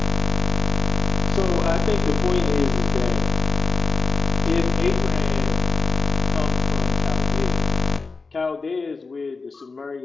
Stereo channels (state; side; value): quieter; right; 4.2 dB